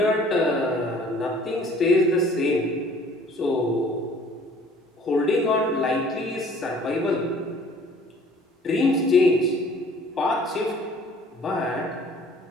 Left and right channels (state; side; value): normal; both; correlation 0.53